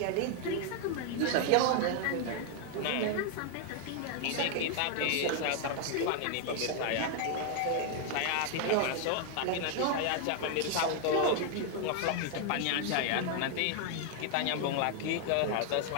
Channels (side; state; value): both; different; correlation 0.00